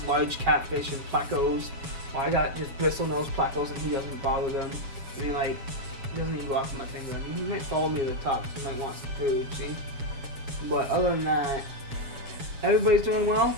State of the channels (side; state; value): left; late; 7.2 ms